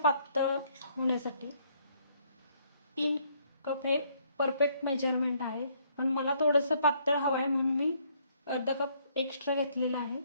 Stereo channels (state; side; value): inverted; both; correlation -0.67